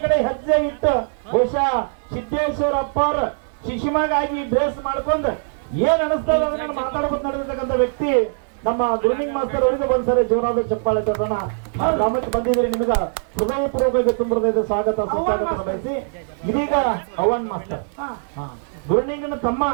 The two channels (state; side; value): silent; left; digital silence